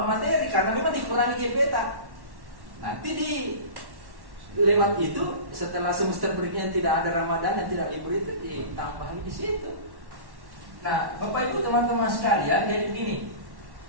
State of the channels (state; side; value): late; left; 1.1 ms